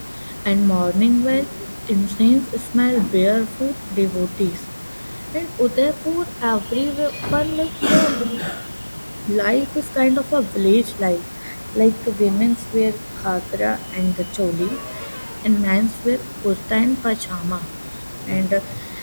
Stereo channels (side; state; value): both; inverted; correlation -1.00